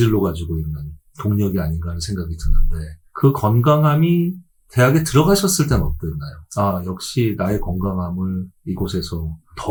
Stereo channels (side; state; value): both; identical; correlation 1.00